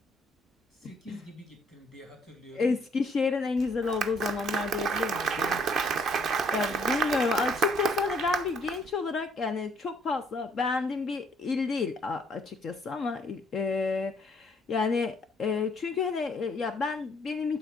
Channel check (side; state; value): both; normal; correlation 0.65